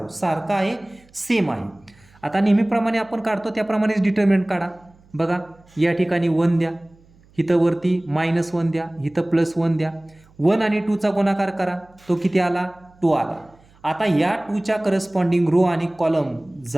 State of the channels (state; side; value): noise; right; hum, 29 dB below the sound